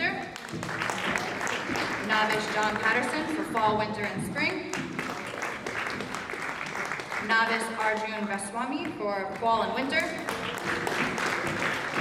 Novice, John Patterson for fall, winter, and spring. Novice Arjun Vaswamy for fall and winter.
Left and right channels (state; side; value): identical; both; correlation 1.00